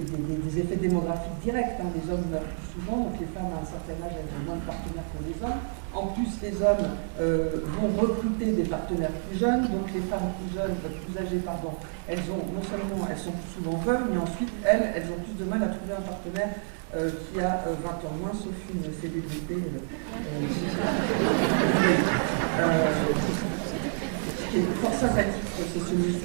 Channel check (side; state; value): left; silent; digital silence